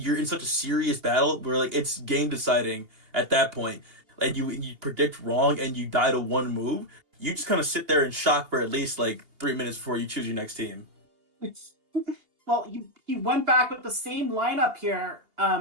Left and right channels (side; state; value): left; late; 2.8 ms